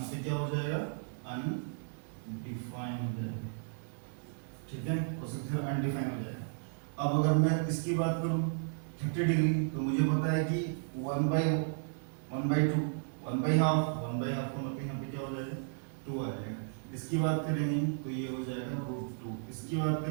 पे क्या हो जाएगा, अनडिफाइंड हो जाएगा, ठीक है। कोसेक थीटा अनडिफाइंड हो जाएगा। अब अगर मैं इसकी बात करूं 30 डिग्री, तो मुझे पता है कि 1/2 1/2 का मतलब यहाँ पे क्या हो जाएगा, 2 आ जाएगा। इसकी बात करेंगे तो ये हो जाएगा √2, इसकी बात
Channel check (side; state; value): left; silent; 55 dB below the other